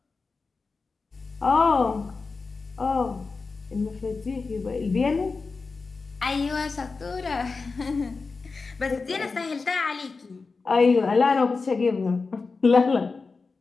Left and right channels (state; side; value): quieter; right; 4.3 dB